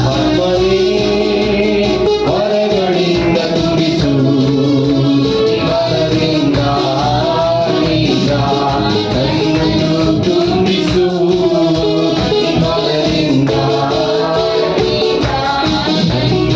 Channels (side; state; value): both; identical; correlation 1.00